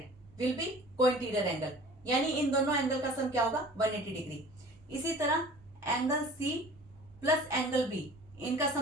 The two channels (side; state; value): both; normal; correlation 0.44